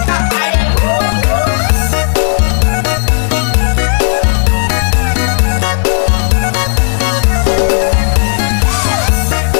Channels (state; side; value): silent; right; digital silence